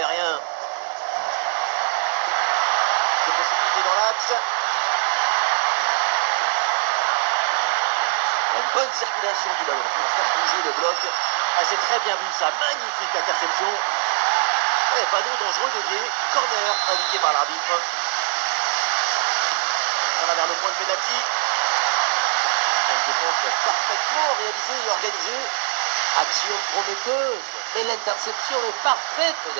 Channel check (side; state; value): left; silent; digital silence